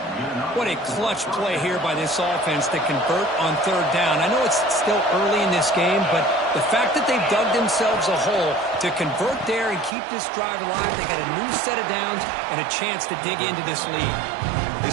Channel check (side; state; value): left; drops out; at 9.9 s